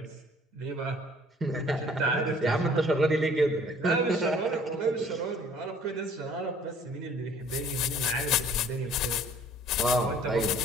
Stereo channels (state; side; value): normal; both; correlation 0.55